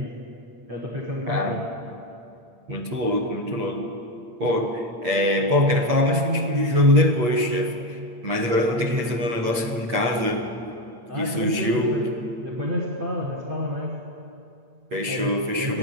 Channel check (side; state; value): left; late; 8.7 ms